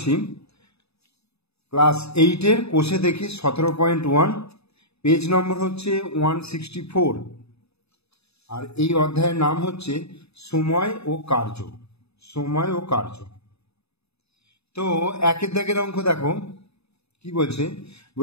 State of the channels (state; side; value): late; right; 0.79 ms